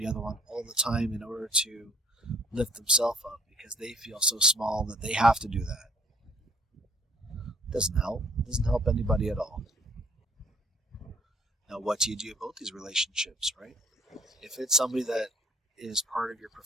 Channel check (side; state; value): both; normal; correlation 0.58